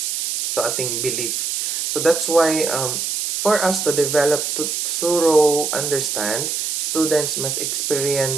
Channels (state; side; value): noise; right; hiss, 2 dB below the sound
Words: So ating belief. So that's why for us to develop to thorough understand, students must